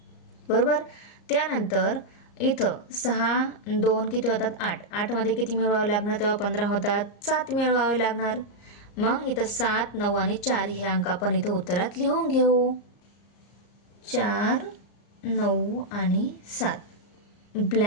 बरोबर. त्यानंतर इथं 6 2 किती होतात, 8. 8 मध्ये किती मिळवावं लागणार, तेव्हा 15 होतात. 7 मिळवावे लागणार. मग इथं 7 9 आणि 4 हे अंक आपण इथं उत्तरात लिहून घेऊ. 4 9 आणि 7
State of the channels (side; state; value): right; late; 34 ms